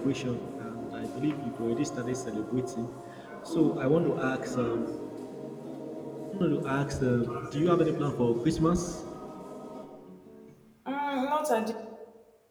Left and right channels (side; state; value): both; identical; correlation 1.00